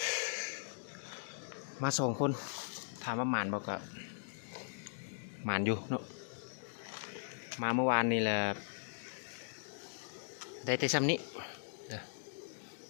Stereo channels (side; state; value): right; silent; digital silence